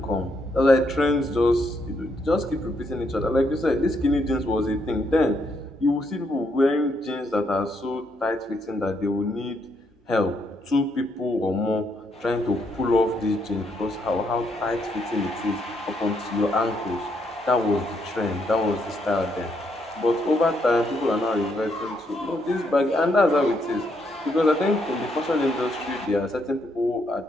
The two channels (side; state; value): both; normal; correlation 0.76